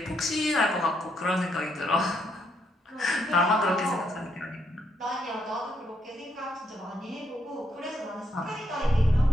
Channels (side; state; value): both; normal; correlation 0.76